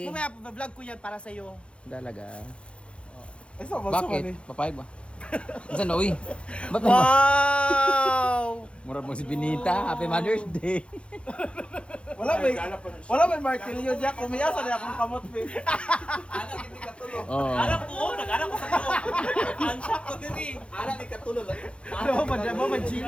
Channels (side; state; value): right; late; 0.059 ms